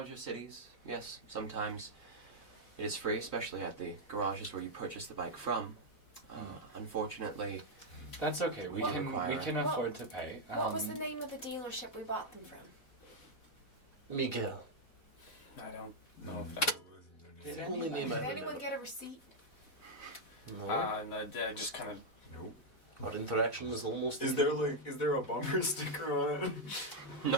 cities, yes, sometimes it is free, especially at the garages where you purchase the bike from. Unfortunately, That's okay. We Well, can Well, afford to pay. What was the name of the dealership we bought them from? Miguel. I don't know if that. It's the only name I Did anyone remember. get a receipt? No. And I just kind of. Nope. Our interaction is almost. Is there a bumper sticker on it?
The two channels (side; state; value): right; late; 4.1 ms